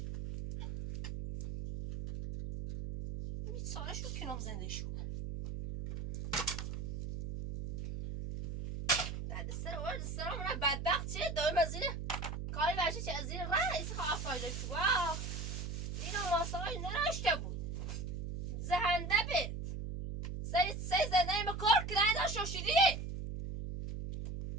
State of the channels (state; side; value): noise; right; hum, 5 dB below the sound